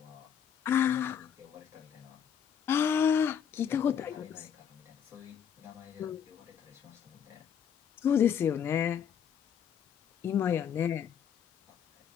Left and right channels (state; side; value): quieter; right; 8.2 dB